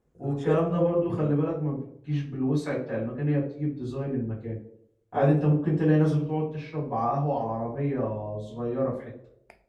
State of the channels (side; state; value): both; identical; correlation 1.00